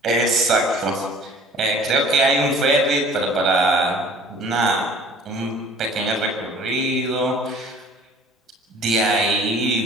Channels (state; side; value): normal; both; correlation 0.50